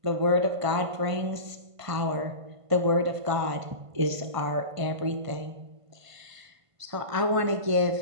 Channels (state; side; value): late; left; 1.5 ms